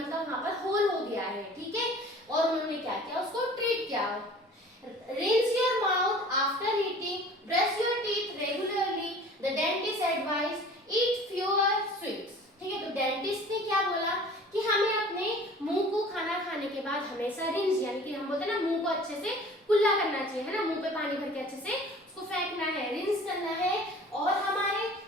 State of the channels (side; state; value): both; normal; correlation 0.46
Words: वहां पर होल हो गया है। ठीक है, और उन्होंने क्या किया, उसको ट्रीट किया। Rinse your mouth after eating, brush your teeth regularly. The dentist advised eat fewer sweets. ठीक है, तो डेंटिस्ट ने क्या बोला कि हमें अपने मुंह को खाना खाने के बाद हमेशा रिंस, यानी कि हम बोलते हैं ना, मुंह को अच्छे से कुल्ला करना चाहिए, है ना, मुंह पे पानी भर के अच्छे से उसको फेंकना है, रिंस करना है, और